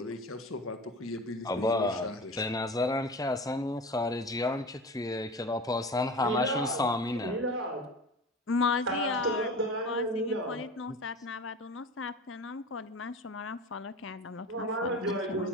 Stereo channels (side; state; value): both; normal; correlation 0.34